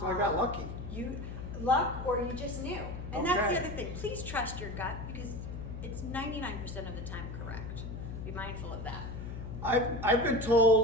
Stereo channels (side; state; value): left; noise; hum, 7 dB below the sound